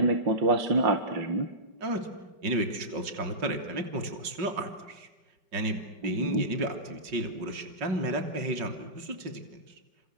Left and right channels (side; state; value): left; late; 5.4 ms